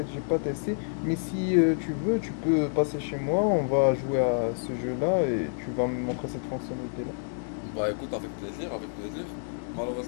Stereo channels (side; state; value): right; silent; digital silence